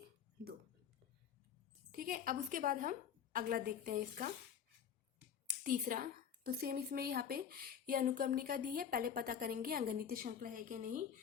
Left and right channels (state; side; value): quieter; right; 8.3 dB